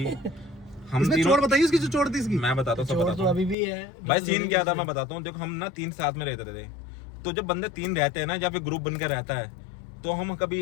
हम इसमें चोट बताइए, इसकी जो चोट थी इसकी मैं बताता हूँ, सब बताता हूँ। अभी भी है भाई, सीन क्या था मैं बताता हूँ। देखो हम ना 3 साथ में रहते थे, तो जब बंदे 3 रहते हैं ना, या फिर ग्रुप बनकर रहता है, तो हम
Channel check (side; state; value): right; drops out; at 3.6 s